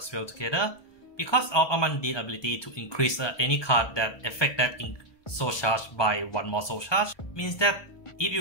well together. Because of a Mundine ability to increase any card that affect that soul charge by 1 more soul charge, means that if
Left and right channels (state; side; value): late; right; 1.2 ms